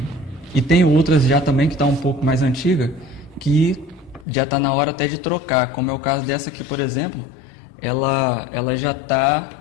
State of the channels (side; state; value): right; drops out; at 4.2 s